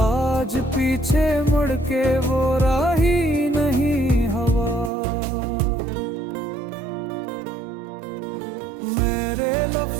आज पीछे मुड़ के वो राही नहीं हवा। मेरे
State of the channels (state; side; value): drops out; left; at 4.9 s